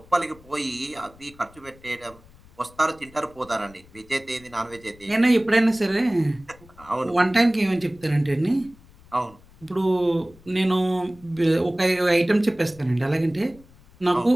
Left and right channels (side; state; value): left; noise; rumble, 25 dB below the sound